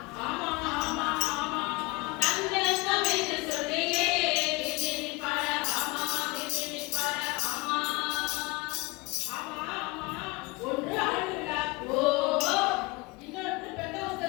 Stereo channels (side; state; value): right; quieter; 25.4 dB